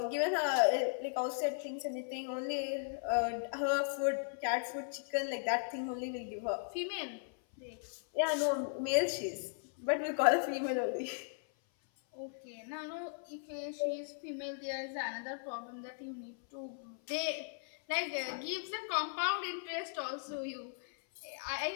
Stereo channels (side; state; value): right; silent; 53 dB below the other